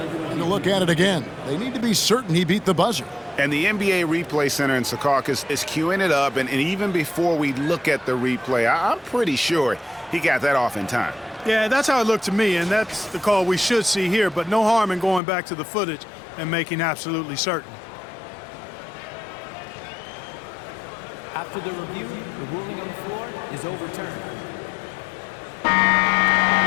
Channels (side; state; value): right; drops out; at 15.2 s